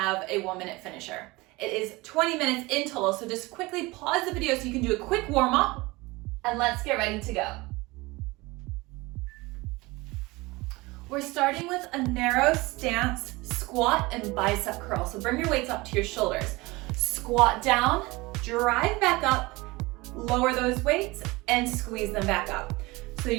a 1-minute finisher. It is 20 minutes in total, so just quickly pause the video so you can do a quick warm up. And let's get ready to go. We're starting with a narrow stance, squat and bicep curl. So bring your weights up to your shoulders. Squat down, drive back up, lower those weights and squeeze them back up. So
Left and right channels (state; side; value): quieter; left; 22.5 dB